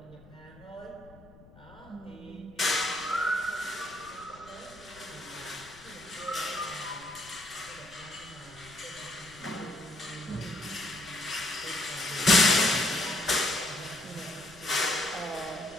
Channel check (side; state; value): left; noise; rumble, 22 dB below the sound